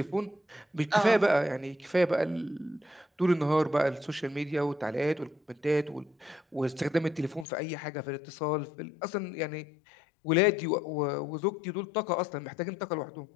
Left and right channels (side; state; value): right; drops out; at 7.5 s